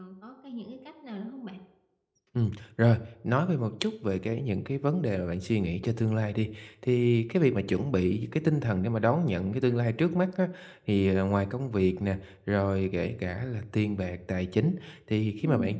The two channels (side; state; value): both; identical; correlation 1.00